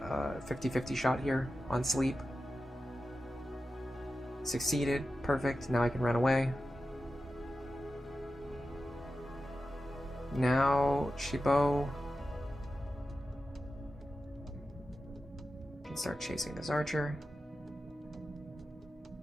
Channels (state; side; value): normal; both; correlation 0.92